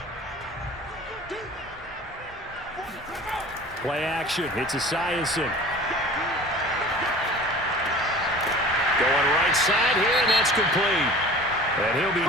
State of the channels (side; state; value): both; normal; correlation 0.42